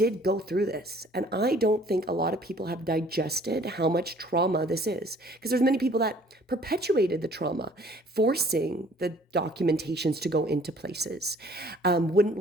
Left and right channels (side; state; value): both; normal; correlation 0.55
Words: go through this, and I don't think a lot of people have digested how much trauma this is, because there's many people that perpetuated the trauma, forcing the documentations to go into places, wouldn't